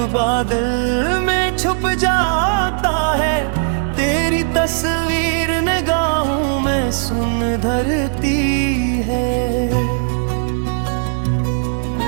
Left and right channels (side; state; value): left; silent; digital silence